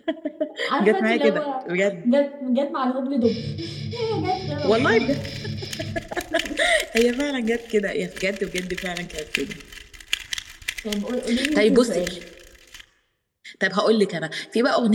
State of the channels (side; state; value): both; identical; correlation 1.00